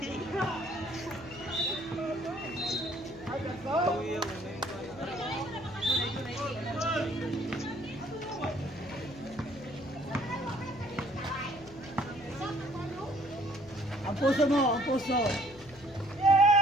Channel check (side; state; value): left; noise; hum, 21 dB below the sound